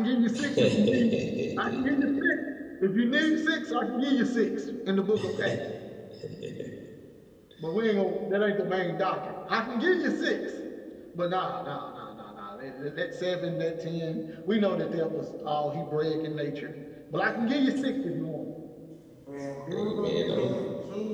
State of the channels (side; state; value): both; identical; correlation 1.00